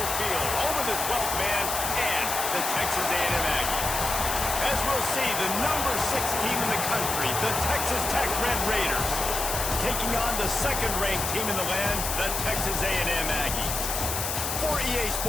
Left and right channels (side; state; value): left; noise; hiss, 2 dB below the sound